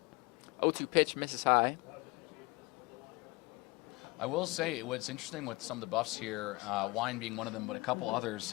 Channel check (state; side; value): quieter; right; 23.9 dB